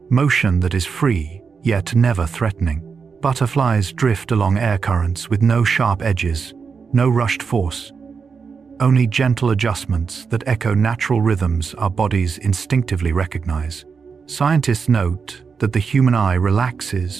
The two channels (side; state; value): left; quieter; 5.6 dB